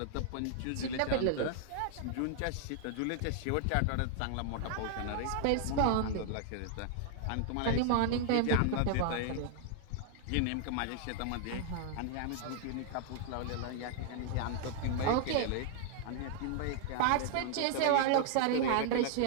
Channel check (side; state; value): both; different; correlation 0.00